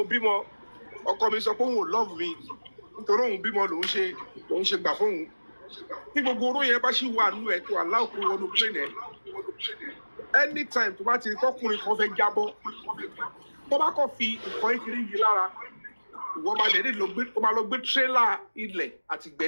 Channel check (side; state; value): both; inverted; correlation -1.00